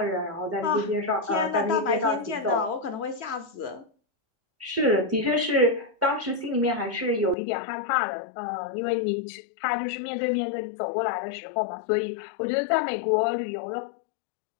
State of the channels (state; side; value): drops out; right; at 7.4 s